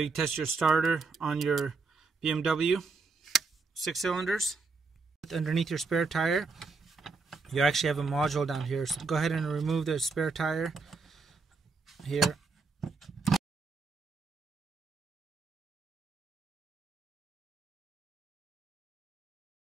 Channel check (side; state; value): left; quieter; 4.4 dB